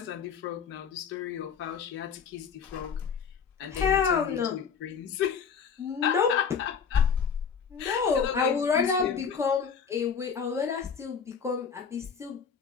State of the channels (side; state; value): right; quieter; 6.5 dB